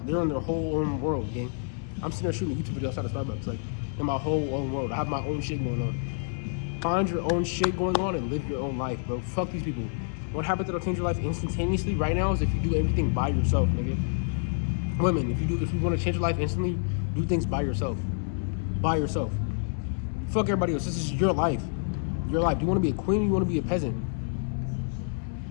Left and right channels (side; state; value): right; silent; digital silence